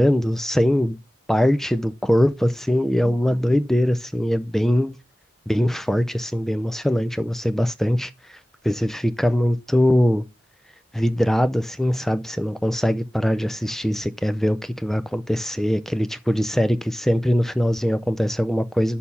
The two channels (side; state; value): both; normal; correlation 0.97